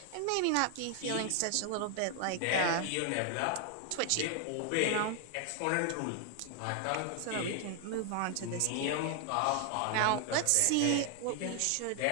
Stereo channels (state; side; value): different; both; correlation 0.00